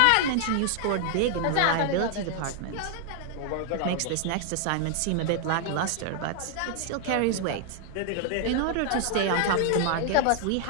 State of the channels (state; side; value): different; both; correlation 0.00